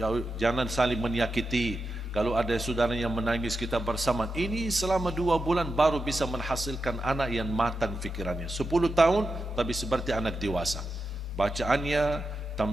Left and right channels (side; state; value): both; normal; correlation 0.89